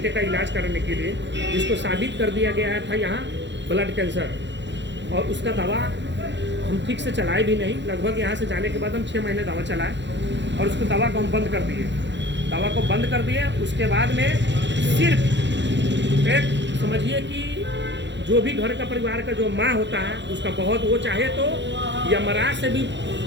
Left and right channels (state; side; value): late; left; 0.52 ms